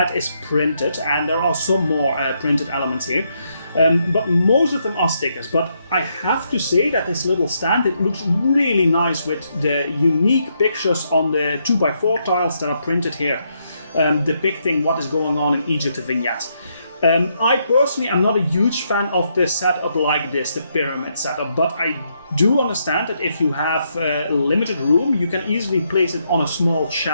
is printed, and there are some more printed elements here. But most of them are stickers. But I have to say that this little stand, it looks really nice with the unique pictures on the 2x4 tiles that are printed here, depicting what is going on in Egypt, the vignette. I personally am not a huge fan of the setup like this, the pyramid setup, but I do understand that if you have limited room, you can easily place it on a small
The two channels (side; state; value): both; inverted; correlation -0.77